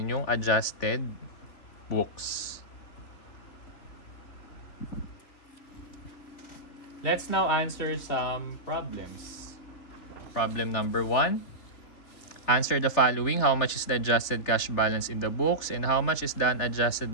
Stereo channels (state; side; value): late; right; 3.3 ms